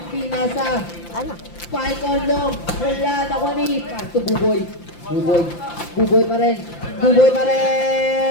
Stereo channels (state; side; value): late; right; 5.8 ms